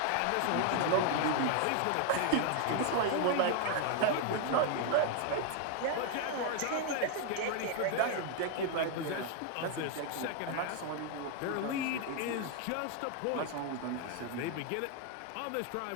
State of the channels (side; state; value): both; different; correlation 0.00